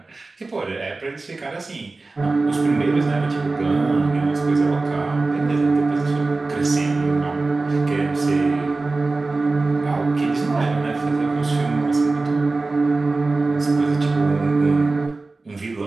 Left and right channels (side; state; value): left; quieter; 3.5 dB